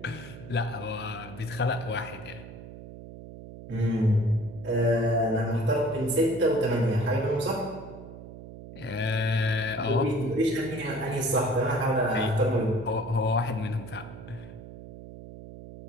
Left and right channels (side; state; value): right; noise; hum, 14 dB below the sound